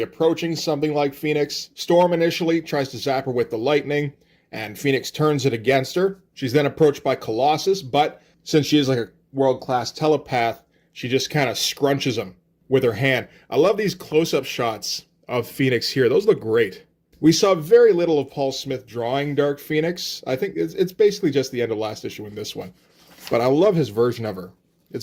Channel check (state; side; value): identical; both; correlation 1.00